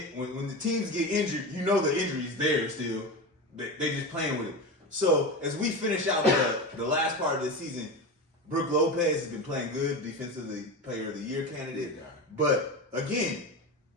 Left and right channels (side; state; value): both; normal; correlation 0.23